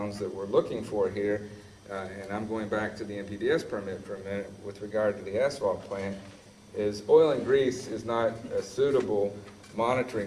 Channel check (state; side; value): identical; both; correlation 1.00